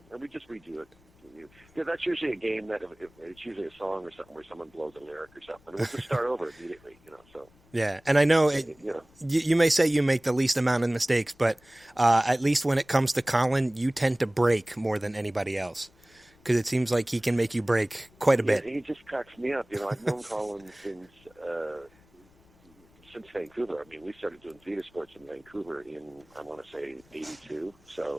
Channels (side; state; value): left; noise; rumble, 30 dB below the sound